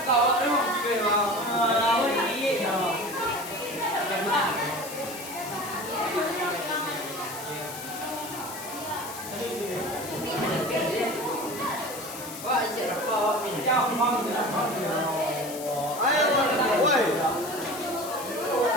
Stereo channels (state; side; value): noise; left; hiss, 11 dB below the sound